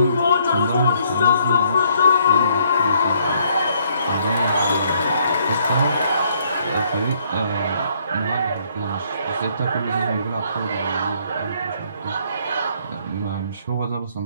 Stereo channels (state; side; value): inverted; both; correlation -0.66